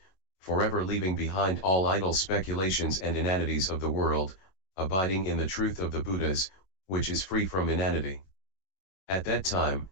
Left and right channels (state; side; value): late; right; 22 ms